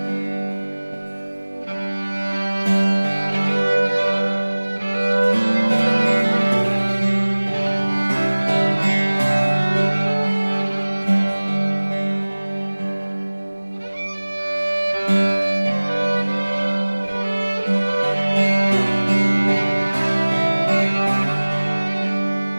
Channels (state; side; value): inverted; both; correlation -1.00